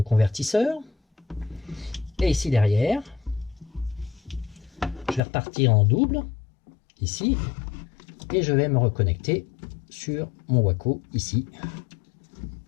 convertisseur. Et ici derrière, je vais repartir en double, ici, et je vais me reconnecter sur mon Waco, ici,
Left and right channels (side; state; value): right; drops out; at 5.2 s